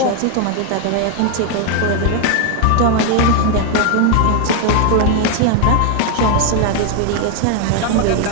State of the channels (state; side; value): different; both; correlation 0.01